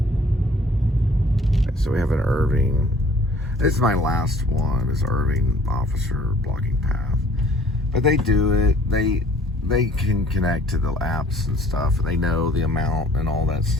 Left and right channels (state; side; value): normal; both; correlation 0.55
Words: So we have an Irving. This is my last one, is Irving officer blocking path. But they do it. They can connect to the apps and stuff. They know the amount and all that